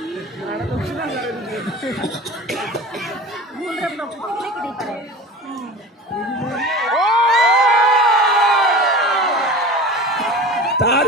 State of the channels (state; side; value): normal; both; correlation 0.35